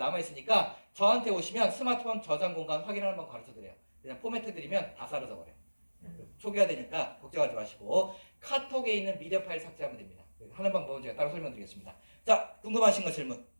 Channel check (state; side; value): inverted; both; correlation -1.00